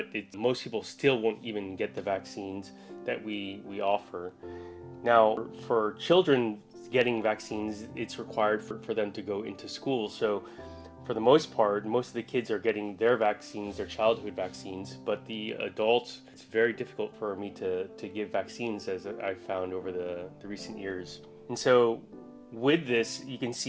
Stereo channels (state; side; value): identical; both; correlation 1.00